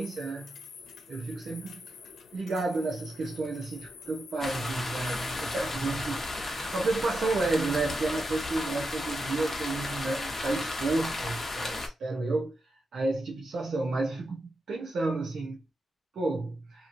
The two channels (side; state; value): both; normal; correlation 0.87